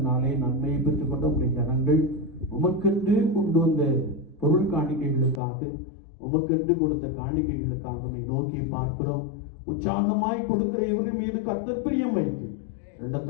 நன்மையை பெற்றுக்கொண்ட உடைய ஜனங்கள் உமக்கென்று கொண்டு வந்த பொருள் காணிக்கைகளுக்காக, உமக்கென்று கொடுத்த காணிக்கைகளுக்காக நோக்கி பார்க்கிறோம். உற்சாகமாய் கொடுக்கிற இவர்கள் மீது கர்த்தர் பிரியம் வைத்து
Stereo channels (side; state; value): right; drops out; at 5.4 s